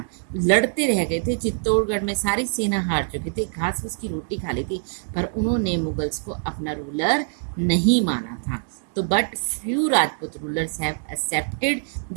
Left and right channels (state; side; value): silent; left; digital silence